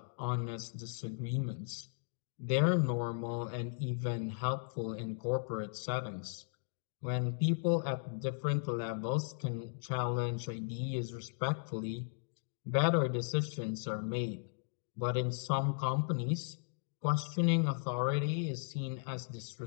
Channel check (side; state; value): right; silent; digital silence